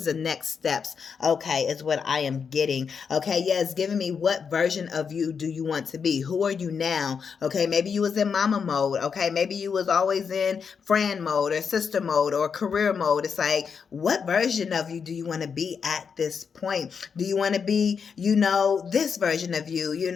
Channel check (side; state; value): right; quieter; 6.2 dB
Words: the next steps? Okay, is what I am getting. Okay, yeah, it's giving me what version of you do you want to be? Who are you now? Okay, maybe you was in mama mode. Okay, maybe you was always in friend mode or sister mode or career mode. It's like, what version of you do you want to be at this point? Do you want to be, this version of you?